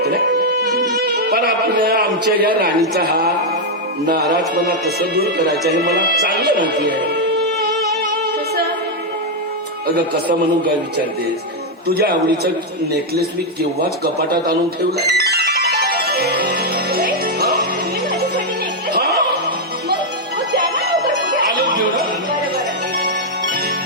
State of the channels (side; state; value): both; normal; correlation -0.01